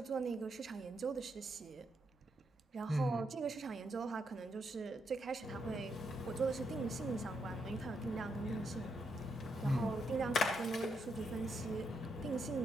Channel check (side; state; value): both; normal; correlation 0.80